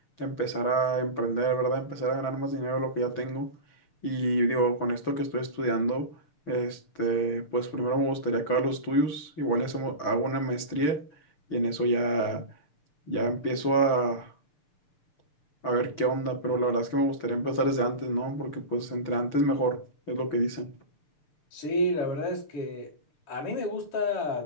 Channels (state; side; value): late; right; 6.7 ms